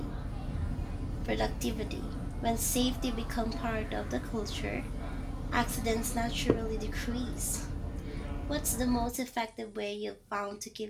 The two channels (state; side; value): identical; both; correlation 1.00